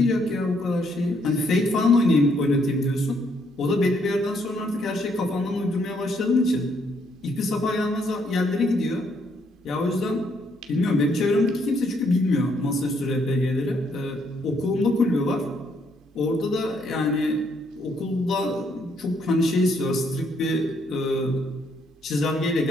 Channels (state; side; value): normal; both; correlation 0.71